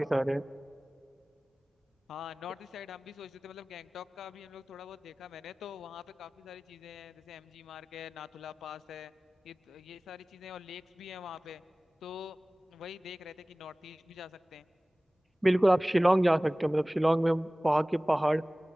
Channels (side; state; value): both; normal; correlation 0.98